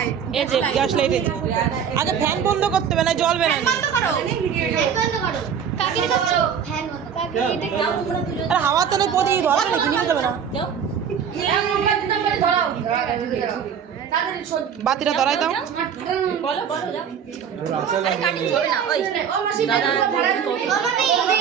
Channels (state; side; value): quieter; left; 7.8 dB